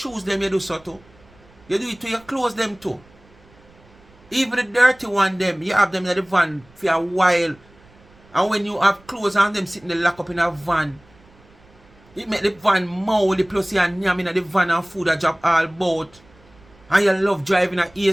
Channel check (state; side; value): noise; right; rumble, 28 dB below the sound